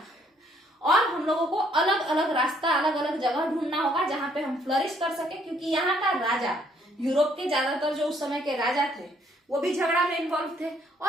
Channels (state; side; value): normal; both; correlation 0.66